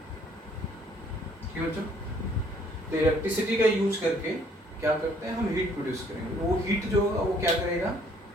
ठीक है बच्चों, तो इलेक्ट्रिसिटी का यूज करके क्या करते हैं हम, हीट प्रोड्यूस करेंगे। वो हीट जो होगा वो क्या करेगा,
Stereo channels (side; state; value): both; normal; correlation 0.62